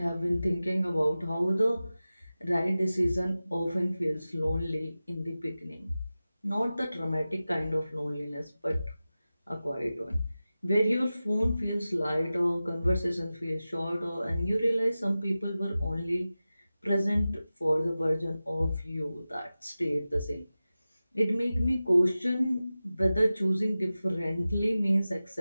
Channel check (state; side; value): inverted; both; correlation -0.95